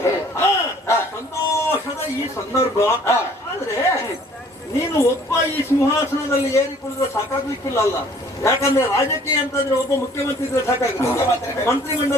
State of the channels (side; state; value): both; normal; correlation 0.55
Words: ಸಂತೋಷದ ಈ ಸಂದರ್ಭ. ಆದ್ರೆ ನೀನು ಒಬ್ಬ ಈ ಸಿಂಹಾಸನದಲ್ಲಿ ಏರಿ ಕುಳಿದ್ರೆ ಸಾಕಾಗ್ಲಿಕ್ಕಿಲ್ಲ ಅಲ್ಲ. ಯಾಕಂದ್ರೆ ರಾಜಕೀಯ ಅಂತಂದ್ರೆ ಒಬ್ಬ ಮುಖ್ಯಮಂತ್ರಿ ಇದ್ರೆ ಸಾಕಾಗುತ್ತೆ,